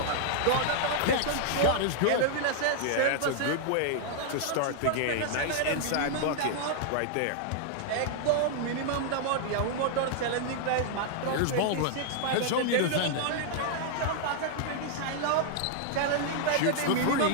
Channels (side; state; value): both; different; correlation -0.01